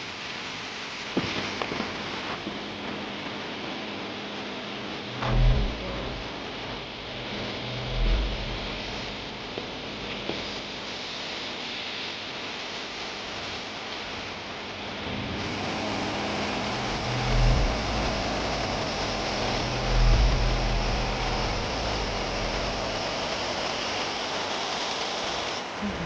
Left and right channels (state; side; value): identical; both; correlation 1.00